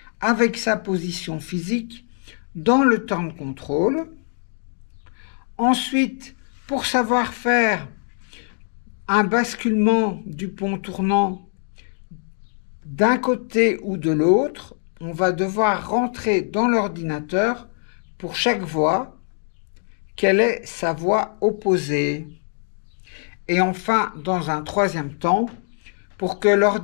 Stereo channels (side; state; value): right; silent; 64 dB below the other